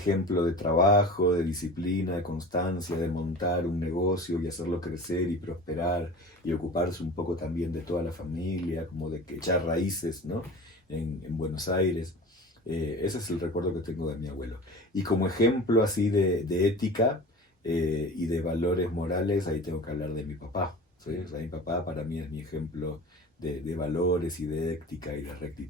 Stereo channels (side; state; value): both; normal; correlation 0.37